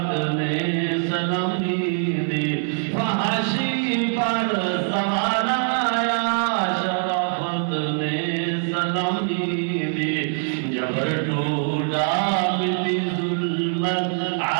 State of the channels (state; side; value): silent; left; digital silence